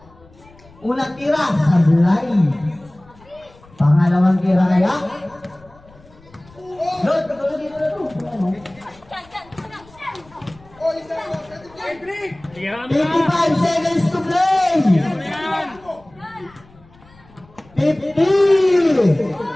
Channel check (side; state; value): left; noise; rumble, 26 dB below the sound